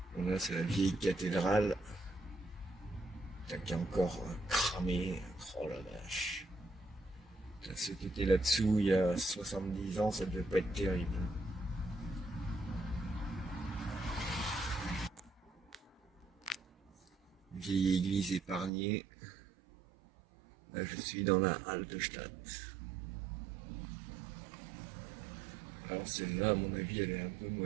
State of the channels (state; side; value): drops out; left; at 18.7 s